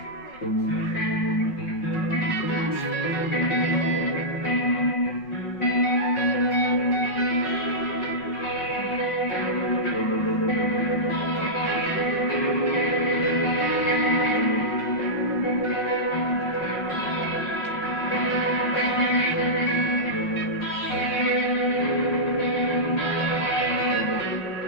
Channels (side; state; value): right; late; 5.4 ms